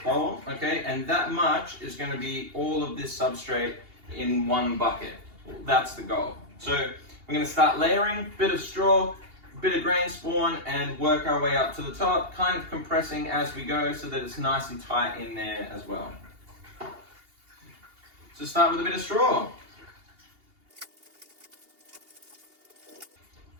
okay? And that much is going to be all of this substrate in one bucket. That's the goal. So we're going to start layering, bit of straw, bit of grain spawn, and work our way up to the top, kind of compressing as we go so that it's nice and tight in there as well. So start with a bit of straw.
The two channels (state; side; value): late; left; 2.8 ms